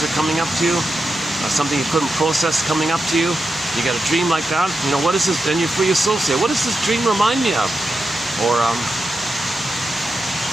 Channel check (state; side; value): normal; both; correlation 0.88